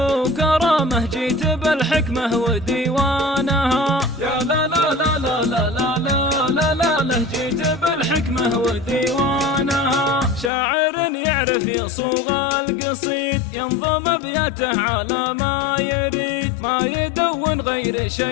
جيت بالحكمة وديوانها، يا لا لا لا لا لا لا لا لا لا، جيت بالحكمة وديوانها. شاعر يعرف يصوغ القصيد، ينظم ابياته على ما يريد، ما يدون غير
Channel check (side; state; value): right; drops out; at 10.5 s